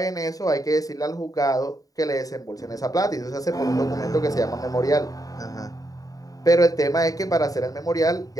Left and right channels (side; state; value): right; late; 0.17 ms